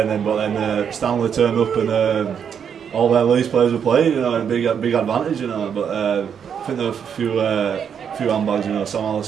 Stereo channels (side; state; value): left; quieter; 7.7 dB